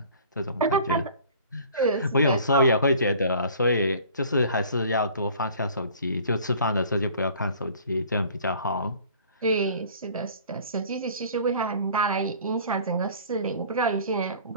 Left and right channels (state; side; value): inverted; both; correlation -0.48